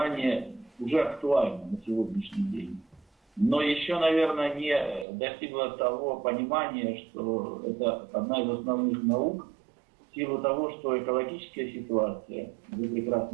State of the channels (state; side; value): drops out; left; at 5.1 s